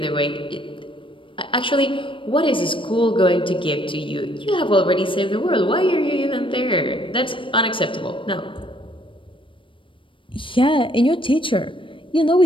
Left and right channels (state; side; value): late; right; 0.25 ms